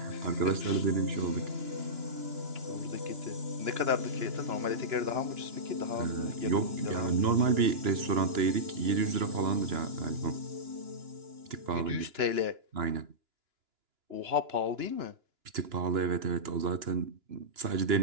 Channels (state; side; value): late; left; 2.9 ms